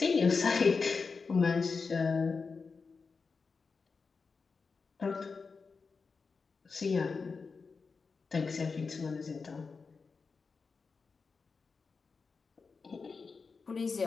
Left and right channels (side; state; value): right; quieter; 4.8 dB